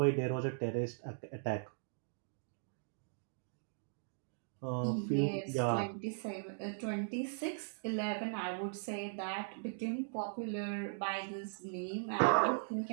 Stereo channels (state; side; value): silent; left; digital silence